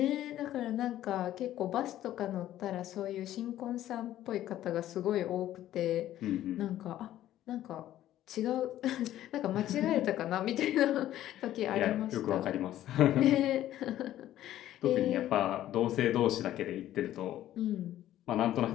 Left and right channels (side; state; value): right; quieter; 13.0 dB